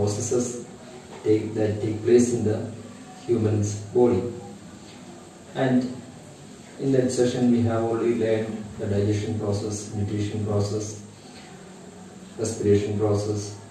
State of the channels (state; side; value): identical; both; correlation 1.00